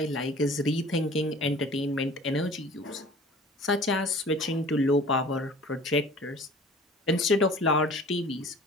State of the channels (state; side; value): normal; both; correlation 0.46